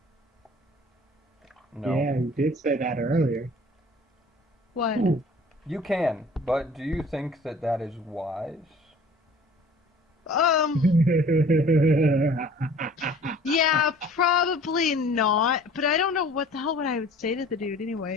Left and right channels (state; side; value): normal; both; correlation 0.49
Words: No. Yeah, you did say that earlier. What? You can, but do you think that that is wise? Yeah, probably not. But I don't know what the hell would I would say to the dude